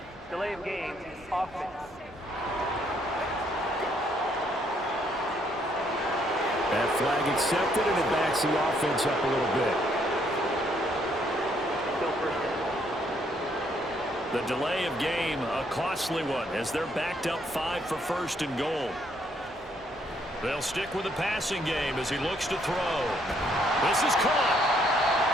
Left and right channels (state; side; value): normal; both; correlation 0.69